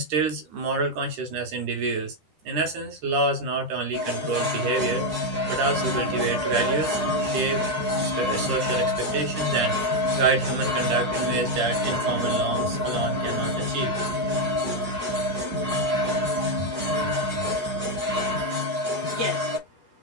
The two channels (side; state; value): left; late; 10 ms